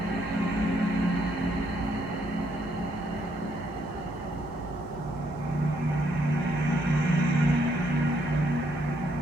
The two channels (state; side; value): normal; both; correlation 0.71